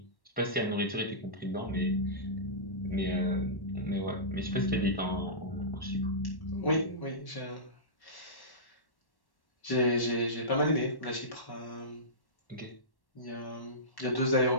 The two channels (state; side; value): late; right; 1.1 ms